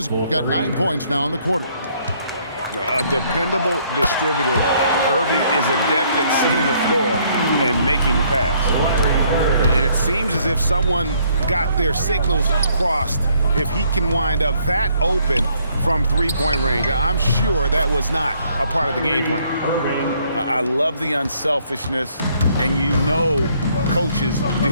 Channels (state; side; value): inverted; both; correlation -0.66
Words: got 9 points now in the quarter. A dependable distributor. Irving is adept at seeing the floor and making the pass. And it seems as if someone got their signals crossed. If he can wind up that open from three-point range, I'm sure that was not a part of the game plan. I love the unselfishness, and you know coaches